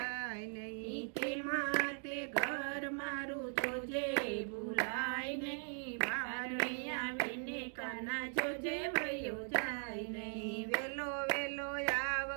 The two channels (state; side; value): silent; left; 51 dB below the other